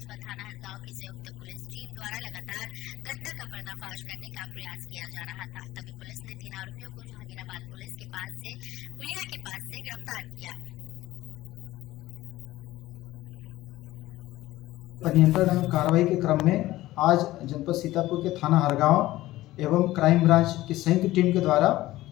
व थाना हरगांव की संयुक्त पुलिस टीम द्वारा लगातार घटना का पर्दाफाश करने का प्रयास किया जा रहा था। तभी पुलिस ने 3 आरोपियों को जहांगीराबाद पुलिस के पास से पुलिया के पास से गिरफ्तार किया। नियंत्रण एवं कार्रवाई के क्रम में आज जनपद सीतापुर के थाना हरगांव एवं क्राइम ब्रांच की संयुक्त टीम के द्वारा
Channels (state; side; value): quieter; right; 16.6 dB